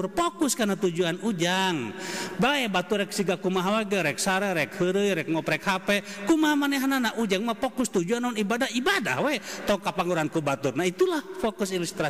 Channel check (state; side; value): identical; both; correlation 1.00